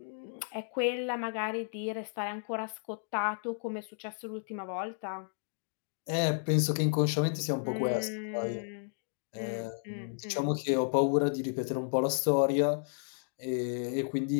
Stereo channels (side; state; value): right; silent; digital silence